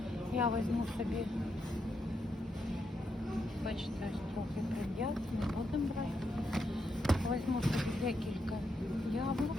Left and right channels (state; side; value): normal; both; correlation 0.82